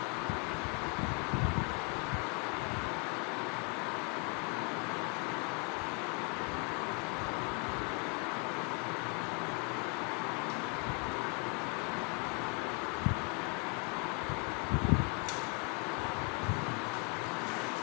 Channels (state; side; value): quieter; right; 32.3 dB